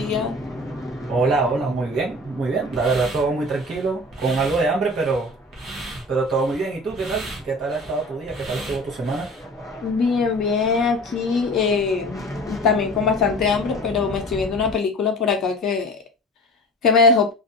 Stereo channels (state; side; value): normal; both; correlation 0.39